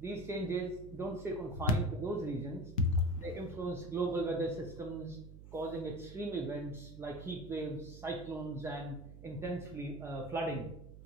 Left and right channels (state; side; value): noise; right; hum, 14 dB below the sound